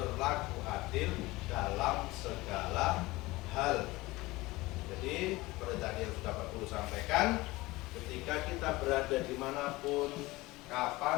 adil dalam segala hal. Jadi seperti tadi yang sudah Pak Guru sampaikan, ketika kita berada dimanapun,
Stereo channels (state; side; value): quieter; right; 20.5 dB